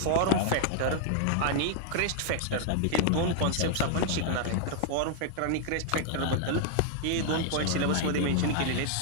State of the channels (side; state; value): both; different; correlation 0.00